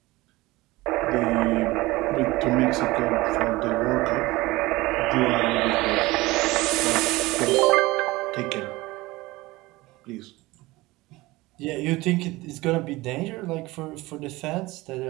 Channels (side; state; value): left; quieter; 20.4 dB